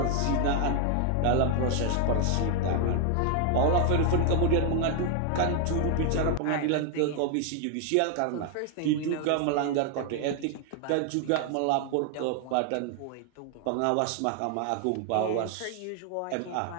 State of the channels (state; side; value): different; both; correlation 0.00